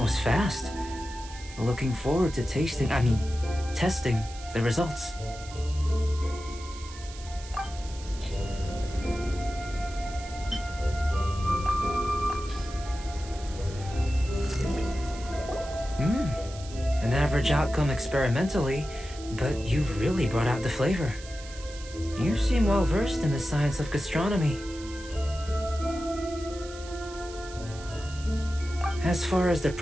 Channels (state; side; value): noise; right; hiss, 16 dB below the sound